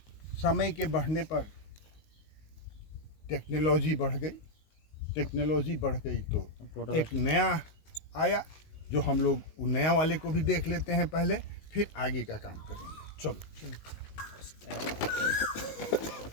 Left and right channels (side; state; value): right; late; 19 ms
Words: समय के बढ़ने पर टेक्नोलॉजी बढ़ गई तो एक नया आया, जो हम लोग वो नया वाले को भी देख लेते हैं पहले, फिर आगे का काम करेंगे। चलो